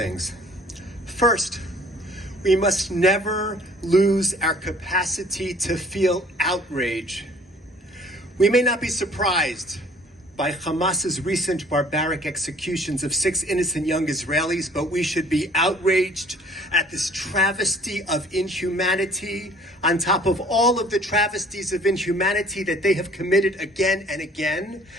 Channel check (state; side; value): normal; both; correlation 0.54